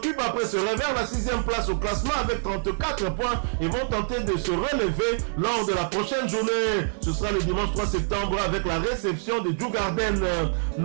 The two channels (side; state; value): left; silent; 61 dB below the other